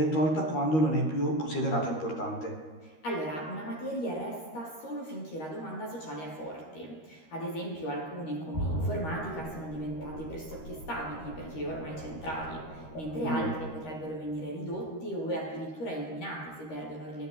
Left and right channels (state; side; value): late; right; 13 ms